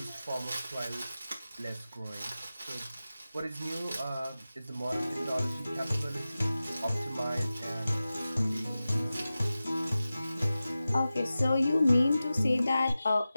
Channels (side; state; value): both; inverted; correlation -0.95